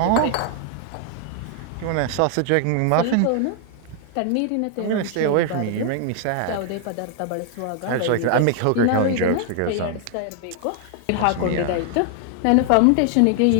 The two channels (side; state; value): both; different; correlation 0.00